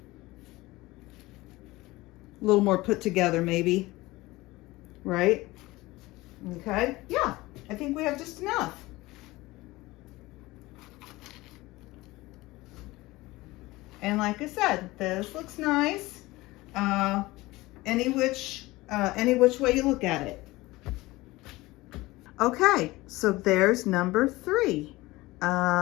A little more put together, maybe. Right? Okay. Yeah, I think we have just enough. And like I said, this looks nice. Any which way you look at it. Okay, so there's number 3.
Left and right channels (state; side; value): quieter; right; 19.9 dB